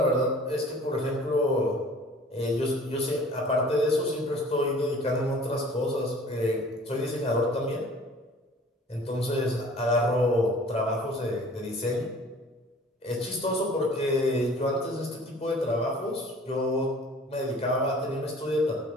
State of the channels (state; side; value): normal; both; correlation 0.48